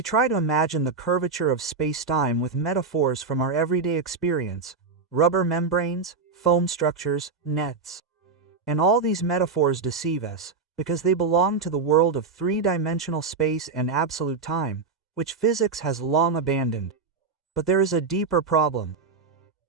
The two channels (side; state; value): left; quieter; 4.7 dB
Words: try to imagine the curvature of space-time with metaphors from our everyday experience: rubber membranes, foam structures, nets. And all these metaphors deceive us, because they belong to the world of three-dimensional space and absolute time, which physics has long abandoned. But there is a deeper problem.